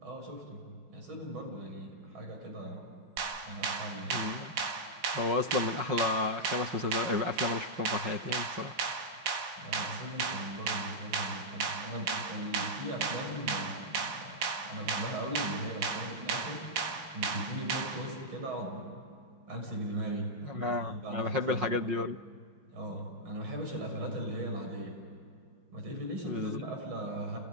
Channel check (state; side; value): late; left; 5.5 ms